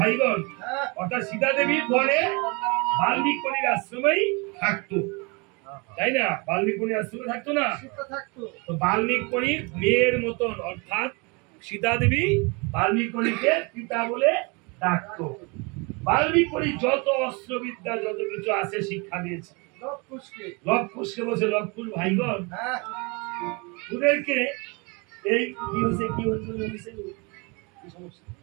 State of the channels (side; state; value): left; quieter; 29.9 dB